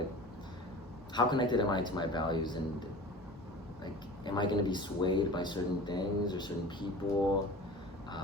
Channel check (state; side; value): normal; both; correlation 0.38